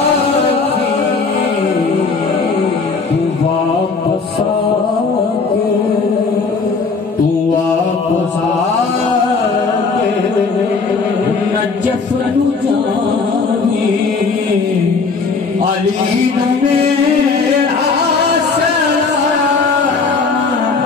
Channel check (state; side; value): quieter; right; 4.6 dB